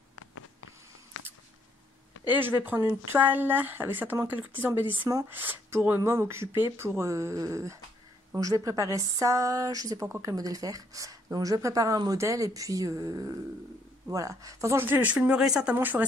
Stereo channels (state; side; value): normal; both; correlation 0.69